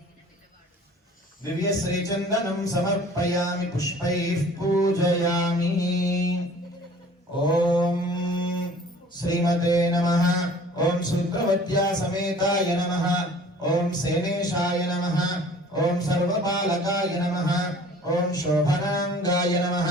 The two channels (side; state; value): both; normal; correlation 0.49